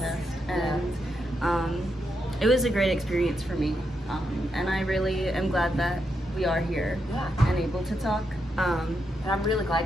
and it was a great experience for me. And I really am glad that we are here and able to talk. And I'm really glad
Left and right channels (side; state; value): both; normal; correlation 0.83